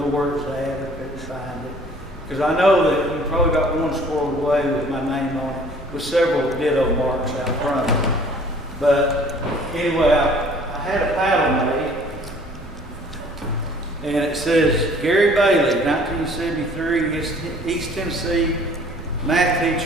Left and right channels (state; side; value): normal; both; correlation 0.53